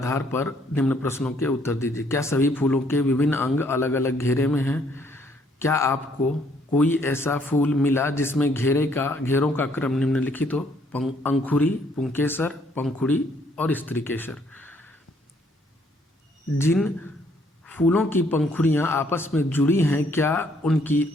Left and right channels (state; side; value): normal; both; correlation 0.66